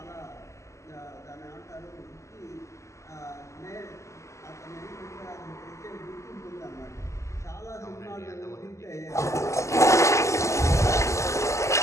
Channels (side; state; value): right; late; 0.14 ms